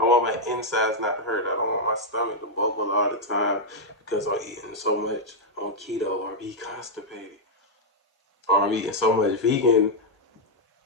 want my insides not to hurt. I don't want my stomach to bubble all the time because I'm eating so much on keto or be constipated. Or I'm eating so much vegan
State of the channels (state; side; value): normal; both; correlation -0.03